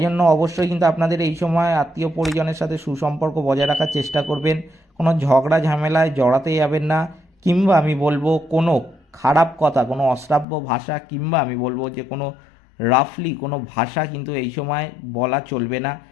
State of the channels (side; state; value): right; drops out; at 10.5 s